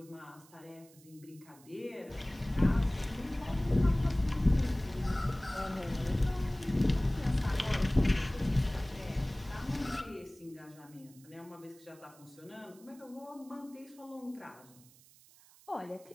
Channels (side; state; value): right; noise; hiss, 25 dB below the sound